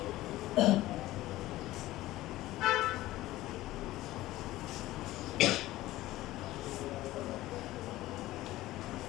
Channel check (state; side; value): quieter; right; 16.6 dB